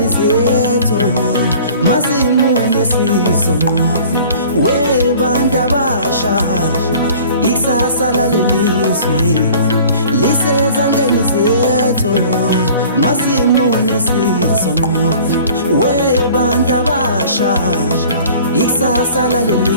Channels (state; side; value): inverted; both; correlation -0.47